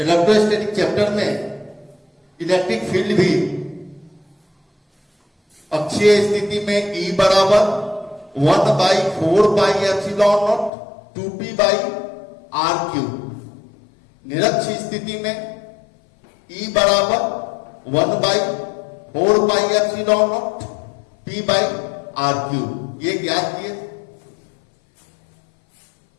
चैप्टर में इलेक्ट्रिक फील्ड भी अक्षीय स्थिति में E बराबर 1/4πε0 2p/r³, निरक्षीय स्थिति में E बराबर 1/4πε0 p/r³, ये ज्ञात किए।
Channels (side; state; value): right; drops out; at 10.7 s